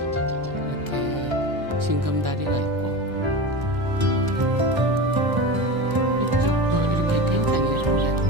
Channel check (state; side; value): late; left; 1.0 ms